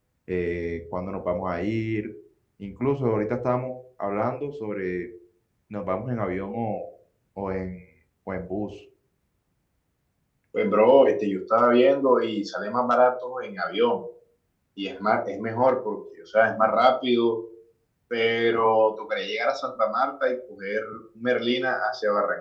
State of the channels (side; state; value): both; identical; correlation 1.00